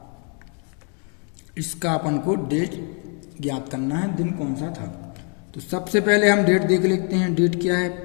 इसका अपन को डेट ज्ञात करना है, दिन कौन सा था। तो सबसे पहले हम डेट देख लेते हैं। डेट क्या है?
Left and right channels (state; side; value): quieter; right; 39.5 dB